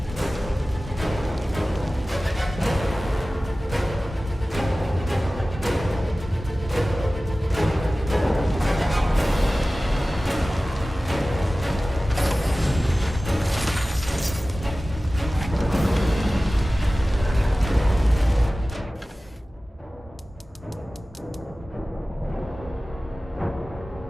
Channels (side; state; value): both; normal; correlation 0.97